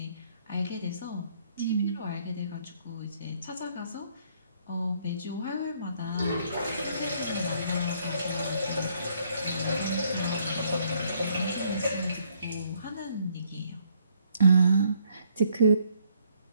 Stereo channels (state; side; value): inverted; both; correlation -0.68